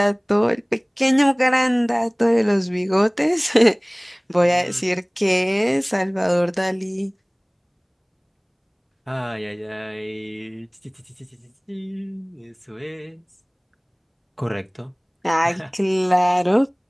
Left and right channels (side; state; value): both; identical; correlation 1.00